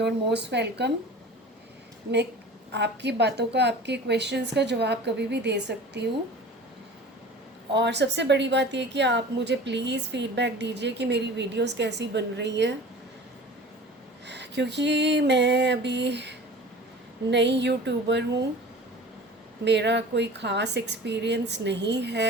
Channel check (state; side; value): normal; both; correlation 0.40